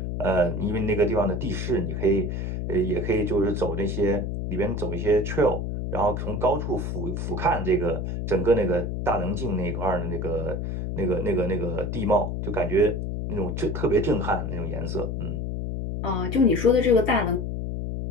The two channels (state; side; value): noise; left; hum, 3 dB below the sound